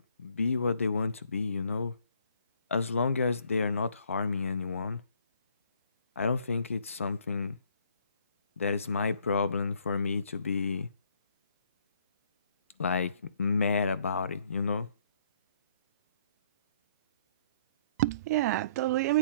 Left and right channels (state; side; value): inverted; both; correlation -0.63